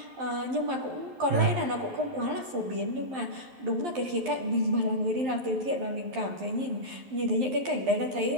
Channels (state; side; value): late; left; 11 ms